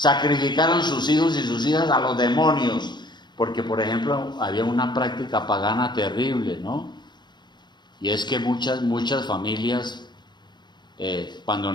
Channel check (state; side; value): late; right; 0.21 ms